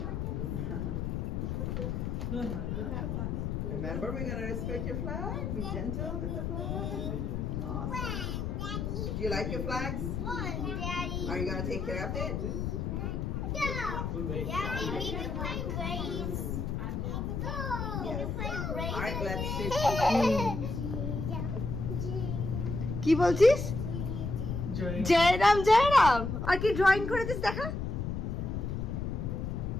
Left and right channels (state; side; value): noise; left; rumble, 2 dB below the sound